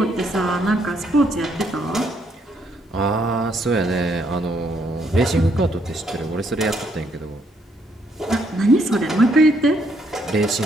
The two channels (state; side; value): normal; both; correlation 0.72